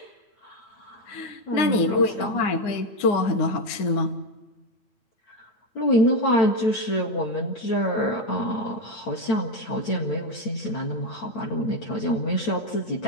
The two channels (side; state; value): right; late; 9.7 ms